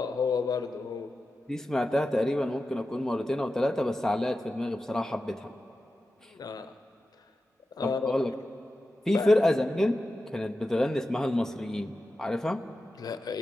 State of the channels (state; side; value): normal; both; correlation 0.92